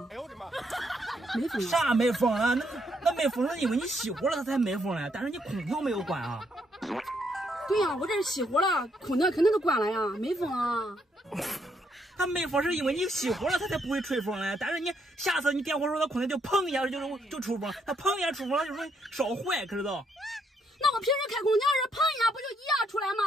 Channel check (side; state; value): both; normal; correlation 0.74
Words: 哎呦我的妈！没风啊？啥没风啊？那没风是因为你熄火了它才没风嘞，但是你空调没有关啊。对呀，我这是熄火了，空调肯定都关了呀，没风啊。它没风是因为你熄火了它才不会吹风嘞，但是你下次你点火时候它空调就砰一下就出风，它砰一下出风了就容易烧坏，可知道？那我平时开空调是砰一下不就一样出来